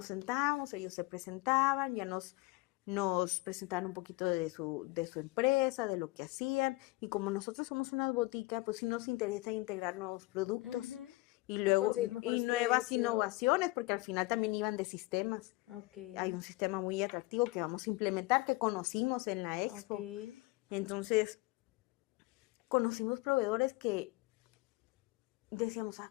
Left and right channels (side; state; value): right; quieter; 21.7 dB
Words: sentábamos, ellos se presentaban, ya nos presentaban un poquito de su empresa, de lo que hacían, y como nosotros somos una botica, pues sí nos interesa integrar nuevos productos y luego nuevas innovaciones, porque al final también iban de sistemas. Hay un sistema muy atractivo que vamos a implementar, que conocimos en la Expo. Entonces, conocimos proveedores que decíamos,